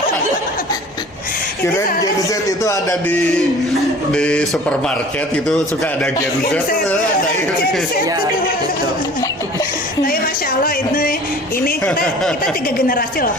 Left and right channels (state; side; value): normal; both; correlation 0.46